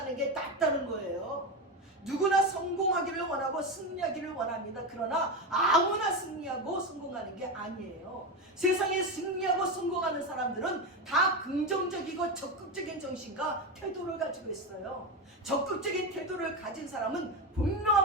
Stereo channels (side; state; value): both; normal; correlation 0.15